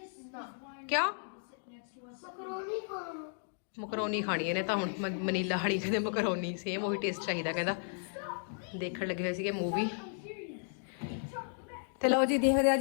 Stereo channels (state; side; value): silent; right; digital silence